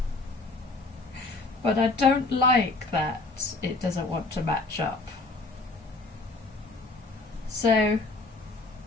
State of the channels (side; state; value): right; quieter; 3.3 dB